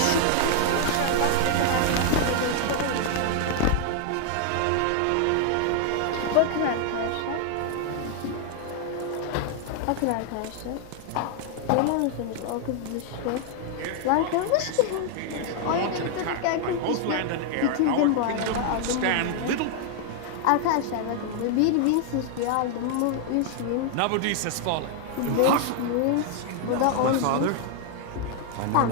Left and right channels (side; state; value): both; different; correlation 0.00